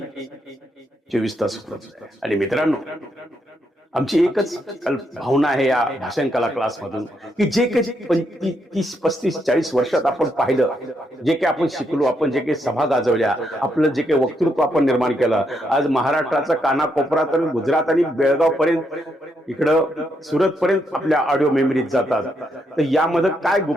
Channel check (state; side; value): normal; both; correlation 0.78